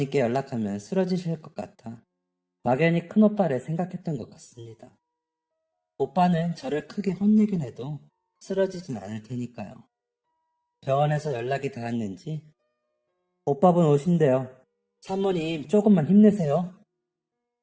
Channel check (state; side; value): identical; both; correlation 1.00